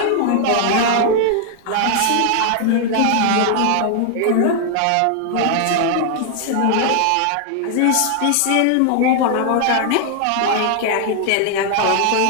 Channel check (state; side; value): different; both; correlation 0.00